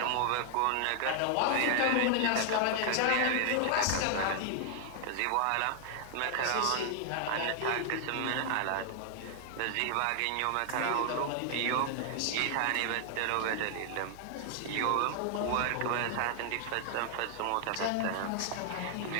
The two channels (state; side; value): different; both; correlation 0.00